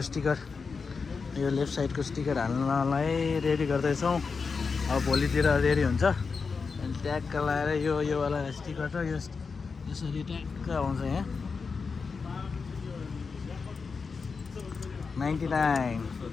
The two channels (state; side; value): quieter; right; 5.0 dB